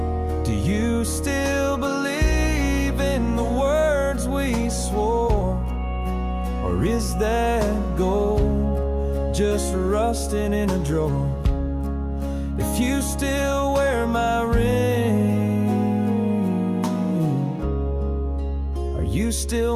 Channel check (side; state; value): both; identical; correlation 1.00